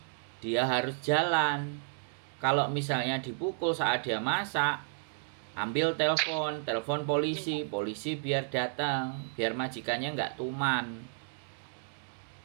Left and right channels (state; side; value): silent; left; digital silence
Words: Dia harus jalan. Kalau misalnya dipukul saat dia masak, ambil telepon polisi biar datang, biar majikannya nggak tuman.